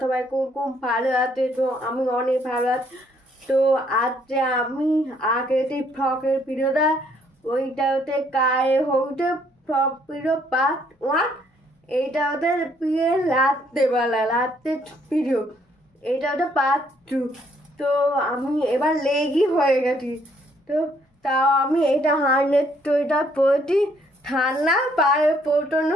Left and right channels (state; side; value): normal; both; correlation 0.67